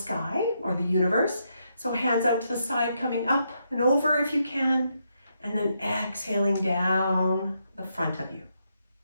or the universe. So hands out to the side, coming up and over if you can, and then exhaling down the front of you.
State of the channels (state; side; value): inverted; both; correlation -0.80